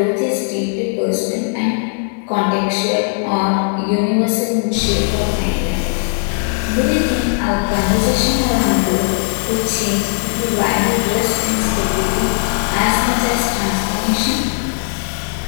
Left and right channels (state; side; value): silent; right; 57 dB below the other